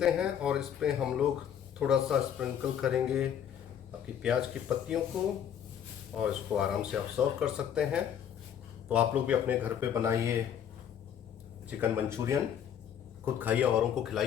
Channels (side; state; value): right; quieter; 9.1 dB